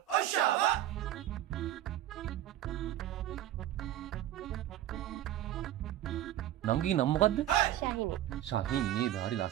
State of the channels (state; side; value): quieter; left; 12.9 dB